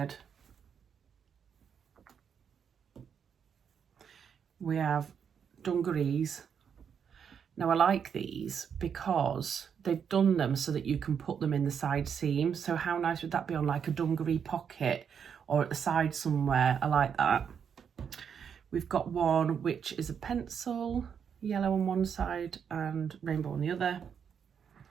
We have dungarees. Now I like these because they've done them so that you can put them in the side seam. So how nice would that be on like a dungaree pocket or at the side somewhere? I like that. We've got one which is a pencil, yellow on one side and rainbow on the other.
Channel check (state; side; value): quieter; left; 7.4 dB